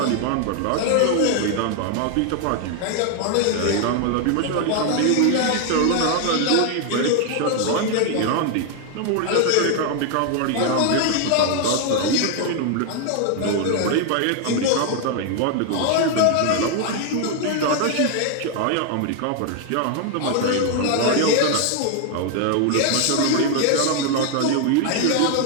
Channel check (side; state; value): both; different; correlation 0.00